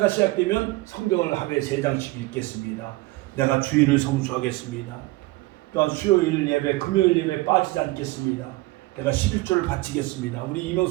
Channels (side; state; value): left; quieter; 20.7 dB